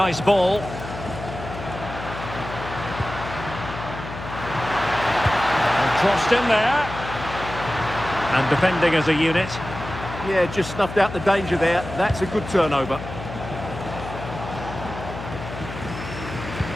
ball. And crossed in there. And defending as a unit. Yeah, just snuffed out the danger there. That's a good turnover.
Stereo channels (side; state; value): left; noise; hum, 10 dB below the sound